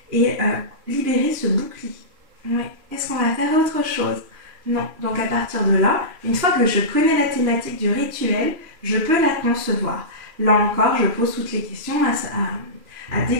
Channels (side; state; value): left; late; 3.0 ms